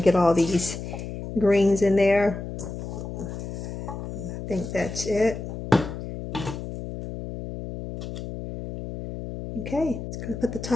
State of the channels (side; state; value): left; noise; hum, 8 dB below the sound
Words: get all these greens in there. I think that's it. Okay, just gonna put the